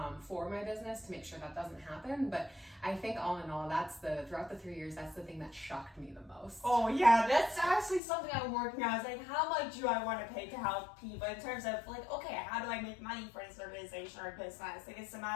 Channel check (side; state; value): right; drops out; at 8.0 s